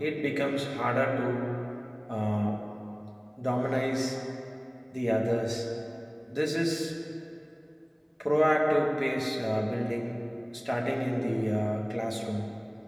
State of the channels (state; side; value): identical; both; correlation 1.00